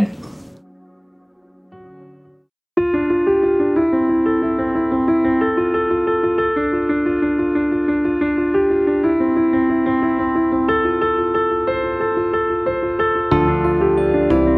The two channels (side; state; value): both; identical; correlation 1.00